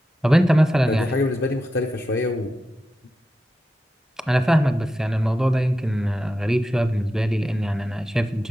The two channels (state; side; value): normal; both; correlation 0.90